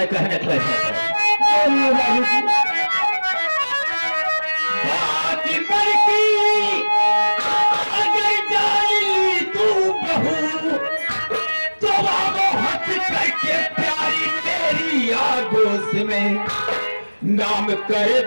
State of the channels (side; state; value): both; inverted; correlation -1.00